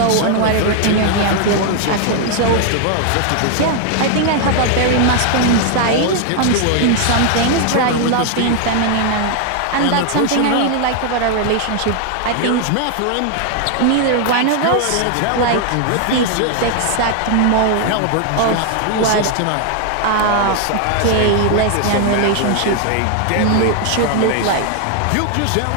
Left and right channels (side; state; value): both; different; correlation 0.00